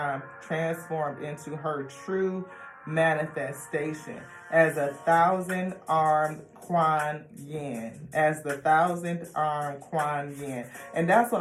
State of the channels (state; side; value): identical; both; correlation 1.00